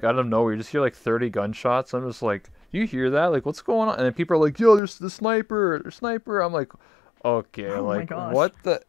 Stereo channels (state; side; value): drops out; right; at 4.8 s